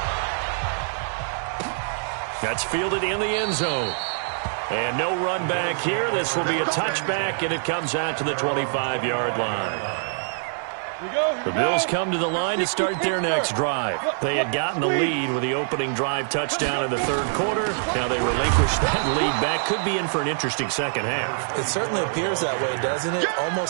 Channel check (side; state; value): left; silent; 59 dB below the other